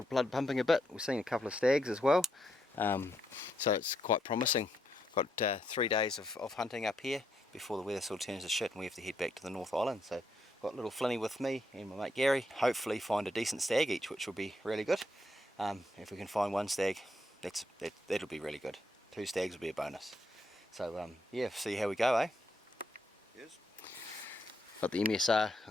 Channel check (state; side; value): normal; both; correlation 0.77